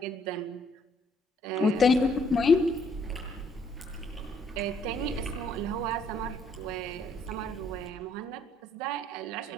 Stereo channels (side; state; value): both; normal; correlation 0.67